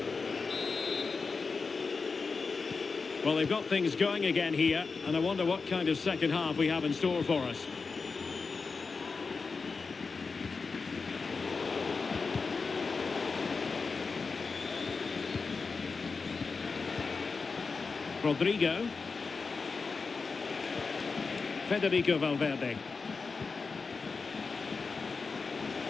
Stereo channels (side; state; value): right; quieter; 4.6 dB